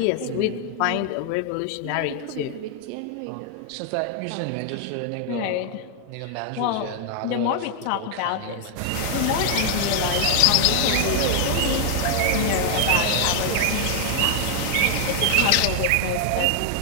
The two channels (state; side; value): different; both; correlation 0.00